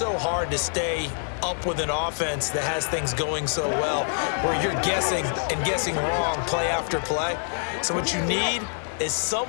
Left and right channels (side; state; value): right; silent; 61 dB below the other